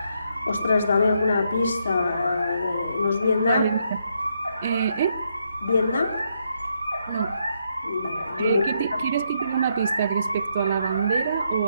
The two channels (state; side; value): inverted; both; correlation -0.77